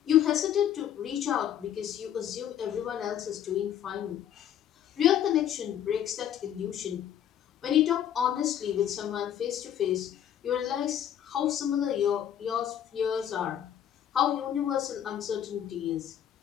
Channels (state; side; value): quieter; right; 10.2 dB